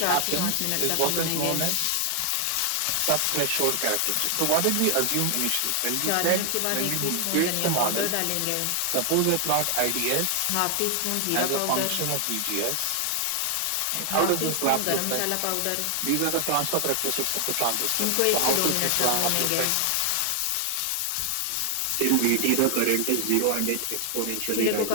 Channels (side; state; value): both; different; correlation 0.00